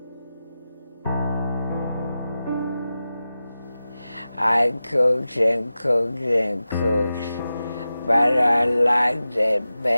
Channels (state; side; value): inverted; both; correlation -0.94